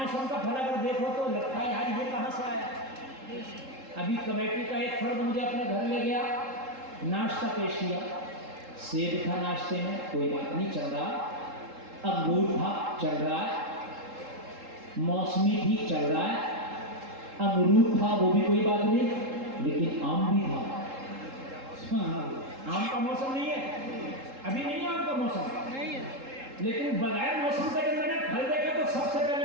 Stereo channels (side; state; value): left; late; 3.7 ms